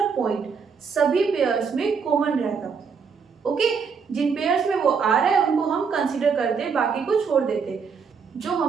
पॉइंट सभी पेयर्स में कॉमन रहता। ओके, जिन पेयर्स में वो आ रहा है उनको हम कंसीडर करते, बाकी को छोड़ देते। जो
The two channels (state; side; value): quieter; left; 5.8 dB